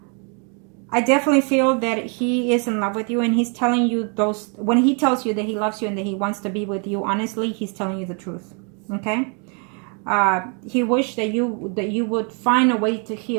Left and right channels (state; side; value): quieter; left; 37.5 dB